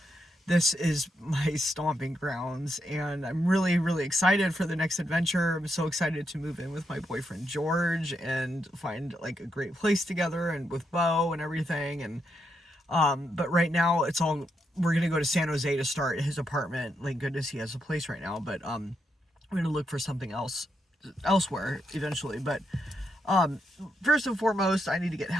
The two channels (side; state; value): both; normal; correlation 0.81